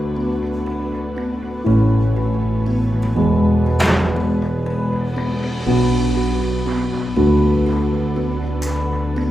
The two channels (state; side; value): normal; both; correlation 0.90